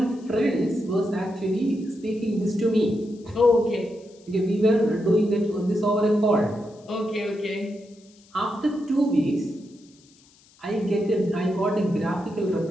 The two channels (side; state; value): left; noise; hiss, 29 dB below the sound